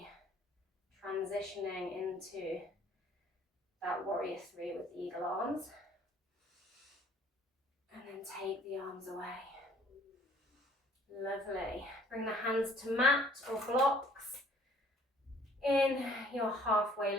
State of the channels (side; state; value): both; normal; correlation 0.56